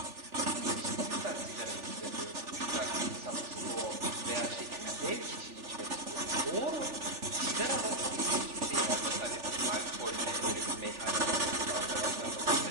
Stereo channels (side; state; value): left; late; 3.4 ms